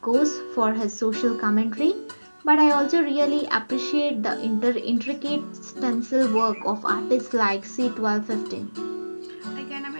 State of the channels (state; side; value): inverted; both; correlation -1.00